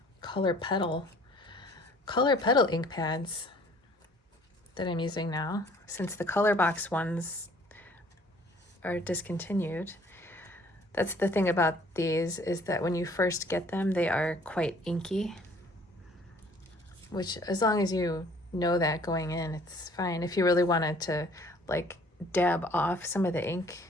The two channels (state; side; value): normal; both; correlation 0.56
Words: color petal ink pads that I'm using now, since the color box ones are discontinued. That's the thing about these, is that when you first get them, they are quite inky, which as long as you know that going in, it's fine. If you really wanted to like dab off some of the ink,